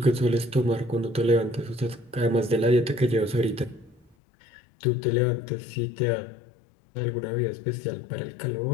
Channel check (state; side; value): drops out; right; at 4.2 s